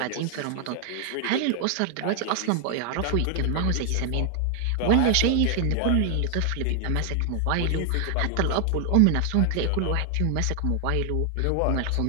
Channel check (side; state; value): both; different; correlation 0.00